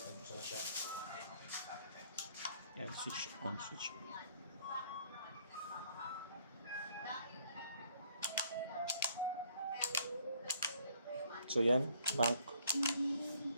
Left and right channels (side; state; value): both; inverted; correlation -0.63